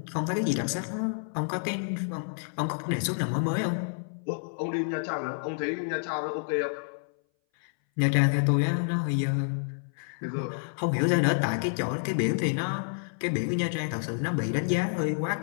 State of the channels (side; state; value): right; silent; 59 dB below the other